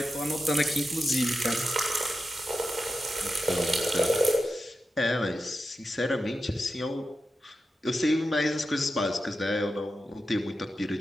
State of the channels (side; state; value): both; normal; correlation 0.90